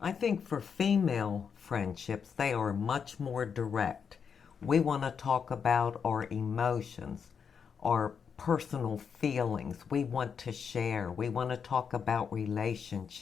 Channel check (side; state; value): right; quieter; 6.6 dB